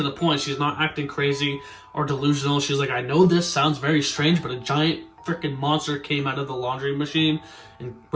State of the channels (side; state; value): both; identical; correlation 1.00